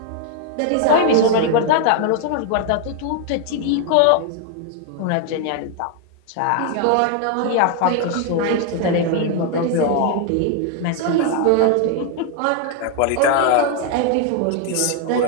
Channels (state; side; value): different; both; correlation 0.00